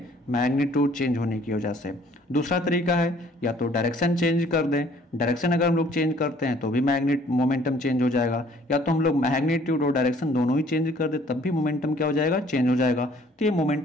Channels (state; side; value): normal; both; correlation 0.58